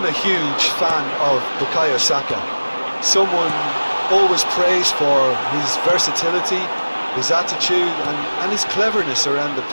a huge fan of Bukayo Saka. Someone always praised for his versatility, his attitude and his cleverness around the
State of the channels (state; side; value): inverted; both; correlation -1.00